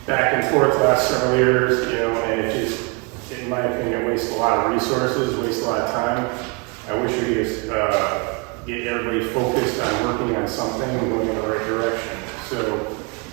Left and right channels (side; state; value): left; quieter; 31.1 dB